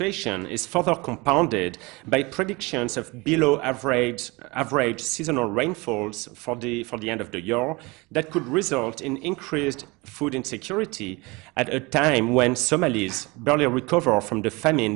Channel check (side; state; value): left; quieter; 24.9 dB